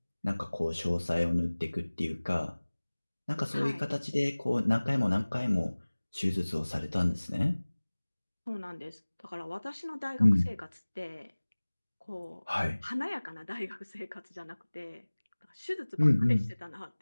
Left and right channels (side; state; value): both; inverted; correlation -1.00